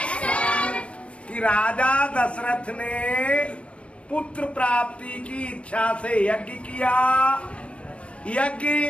कि राजा दशरथ ने पुत्र प्राप्ति की इच्छा से यज्ञ किया। यज्ञ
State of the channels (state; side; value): late; right; 0.061 ms